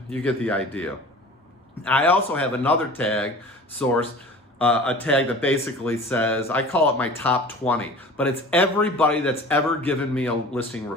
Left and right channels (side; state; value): both; normal; correlation 0.41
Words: You get the idea. I also have another tag source, a tag that basically says, I call it my top 20, but it's everybody that's ever given me a listing